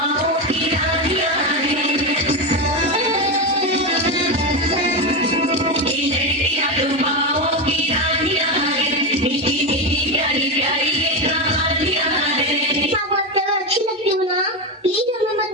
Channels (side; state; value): both; normal; correlation 0.14